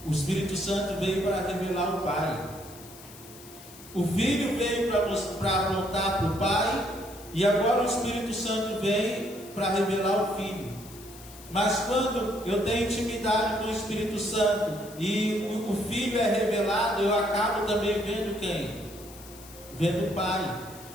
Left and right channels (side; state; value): left; noise; hiss, 19 dB below the sound